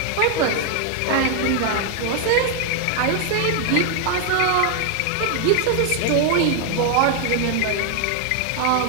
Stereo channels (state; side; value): different; both; correlation 0.00